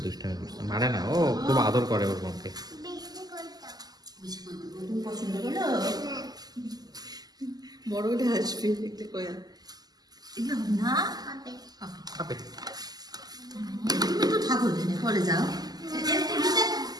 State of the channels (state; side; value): late; left; 0.19 ms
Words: মারে না ও খুব আদর করে ওর মনকে পছন্দ করো বড় হলে আসবে দেখতে কয়া এগুলো না খাবে তুমি তো ঠাকুর এখানে পরে যাও